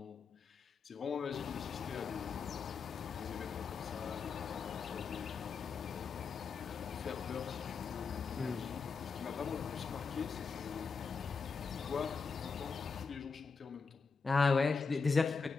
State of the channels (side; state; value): right; quieter; 5.1 dB